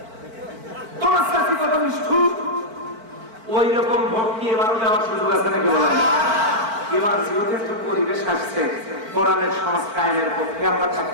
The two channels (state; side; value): late; left; 4.5 ms